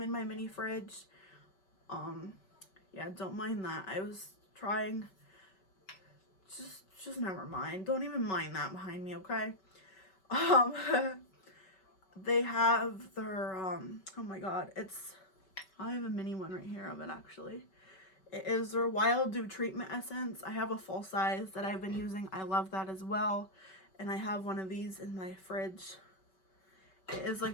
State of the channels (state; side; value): late; right; 5.3 ms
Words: my mini fridge. Yeah, don't mind that. I was trying. Just never mind. Don't even mind that behind me, okay? They have their, oh my god, I have a mini one right here of it actually. It is their Wild Dew Treatment Essence. I have a full size that I've been using. I love that as well. And I have one of these in my fridge. It is